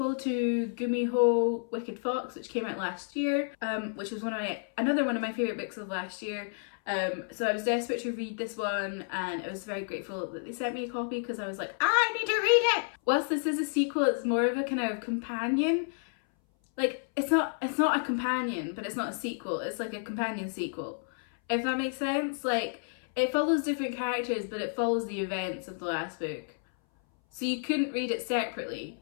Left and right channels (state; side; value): silent; right; 57 dB below the other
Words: to Gumiho Wicked Fox, which came out last year, which was another one of my favourite books of last year. So I was desperate to read this one, and I was very grateful that they sent me a copy because I was like, I need to read it! Whilst this is a sequel, it's more of a kind of companion. Like, it's not a companion, but it's not a sequel. It's like a companion sequel, if that makes sense. Like, it follows different characters, but it follows the events of the last book. So you couldn't read it separately,